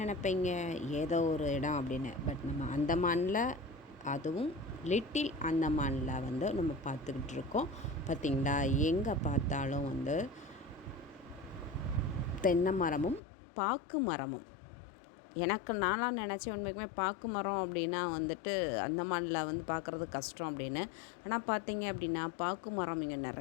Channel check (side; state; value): right; drops out; at 13.2 s